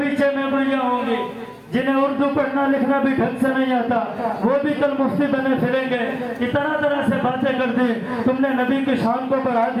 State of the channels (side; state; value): both; identical; correlation 1.00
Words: میموریاں ہوں گی جنہیں اردو پڑھنا لکھنا بھی ڈھنگ سے نہیں آتا، وہ بھی کل مفتی بنے پھریں گے کہ طرح طرح سے باتیں کر دی۔ تم نے نبی کی شان کو بڑھا